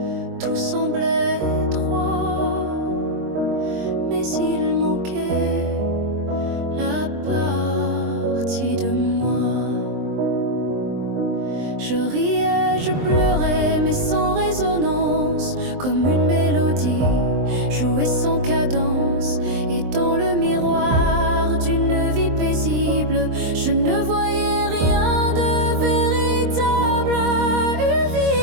tout semblait droit, mais il manquait la partie de moi. Je riais, je pleurais, mais sans résonance, comme une mélodie jouée sans cadence. Et dans le miroir d'une vie paisible, je ne voyais rien de véritable. Une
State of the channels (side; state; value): left; late; 23 ms